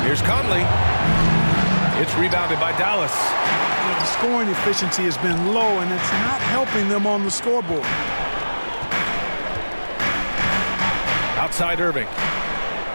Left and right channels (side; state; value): both; inverted; correlation -1.00